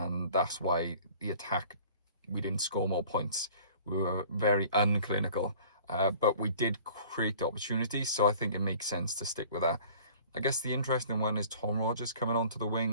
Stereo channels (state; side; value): inverted; both; correlation -0.49